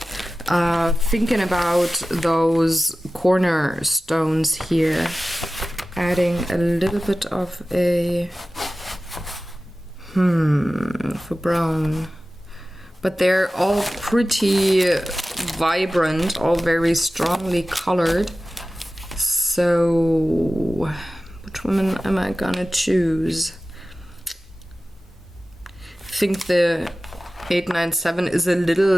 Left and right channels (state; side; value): normal; both; correlation 0.95